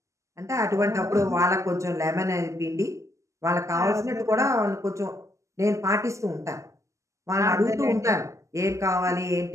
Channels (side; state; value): left; late; 0.15 ms